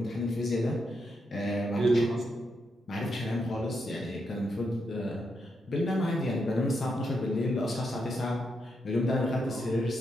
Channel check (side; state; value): both; normal; correlation 0.82